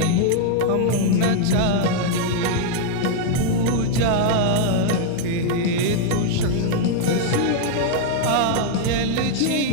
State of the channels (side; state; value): both; different; correlation -0.01